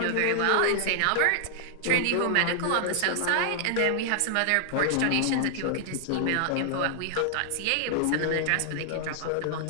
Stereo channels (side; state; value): both; different; correlation 0.00